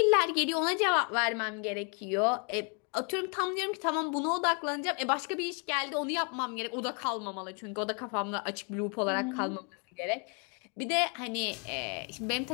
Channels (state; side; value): quieter; right; 36.4 dB